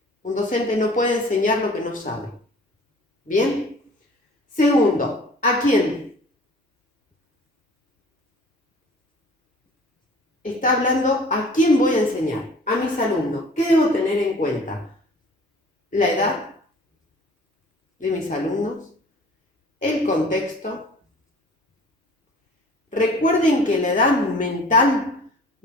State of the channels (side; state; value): both; normal; correlation 0.47